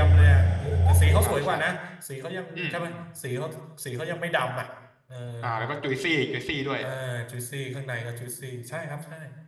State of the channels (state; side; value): identical; both; correlation 1.00